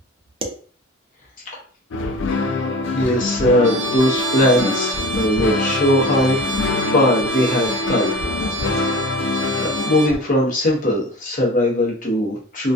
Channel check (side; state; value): both; normal; correlation 0.37